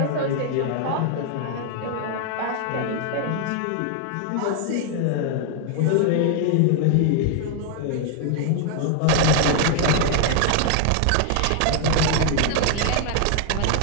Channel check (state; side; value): different; both; correlation 0.00